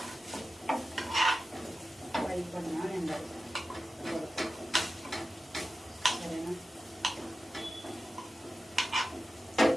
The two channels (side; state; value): both; normal; correlation 0.93